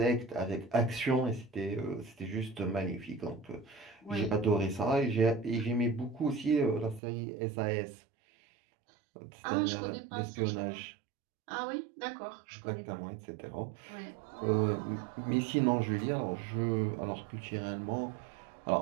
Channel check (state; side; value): drops out; left; at 7.0 s